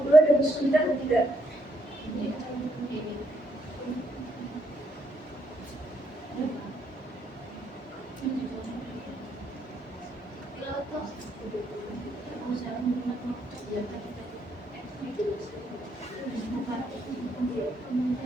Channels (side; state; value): both; normal; correlation 0.75